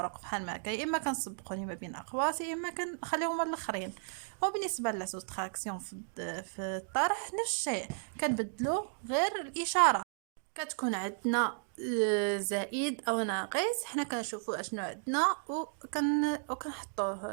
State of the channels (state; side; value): silent; left; 55 dB below the other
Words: بحال ما هكا، يا اما كنسبقوني ما بين اقواس يا اما كنخليهم الاخرين. وبالنسبه للسوستراكسيون في الطرح نفس الشيء، كنبدلو غير الاشاره. كتكون عندنا زائد او ناقص، حنا كنشوفوا اشنو عندنا